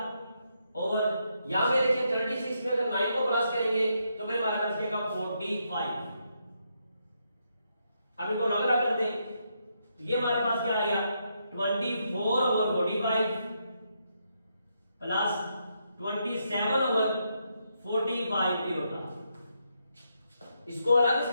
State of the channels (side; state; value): both; inverted; correlation -0.79